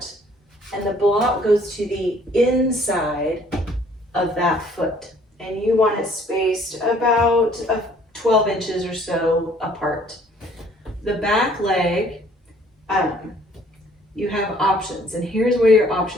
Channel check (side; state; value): both; normal; correlation 0.58